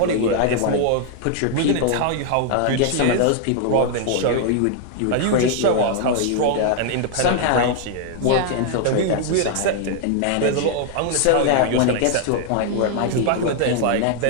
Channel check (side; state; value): both; different; correlation 0.00